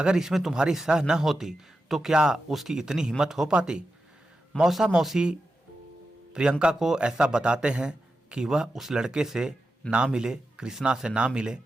इसमें तुम्हारी सह न होती तो क्या उसकी इतनी हिम्मत हो पाती। मौसा मौसी प्रियंका को ऐसा बताते हैं कि वह उस लड़के से ना मिले, कृष्णा से ना मिले,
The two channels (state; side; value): normal; both; correlation 0.90